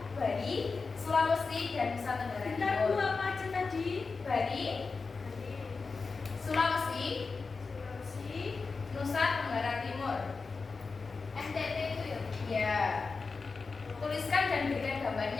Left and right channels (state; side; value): quieter; right; 4.4 dB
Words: Bali, Sulawesi, dan Nusa Tenggara Bentar Bu, Timur. apa aja tadi? Bali, Sulawesi, Sulawesi, Nusa Tenggara Timur. NTT itu ya? Ya. Tuliskan dan berikan